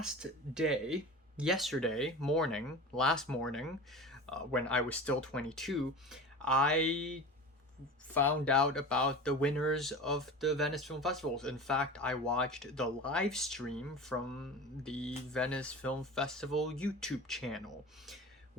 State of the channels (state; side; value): normal; both; correlation 0.33